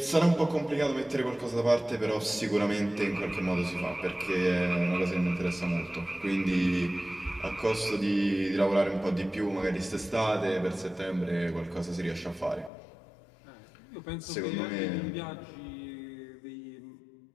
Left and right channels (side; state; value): right; drops out; at 12.7 s